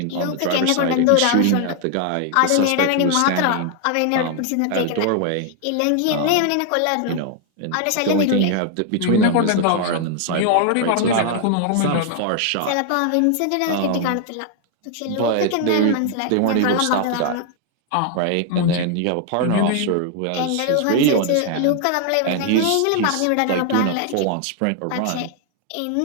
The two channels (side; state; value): both; different; correlation 0.00